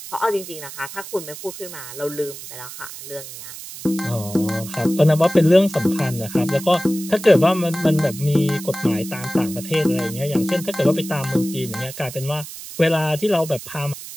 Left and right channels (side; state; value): right; noise; hiss, 12 dB below the sound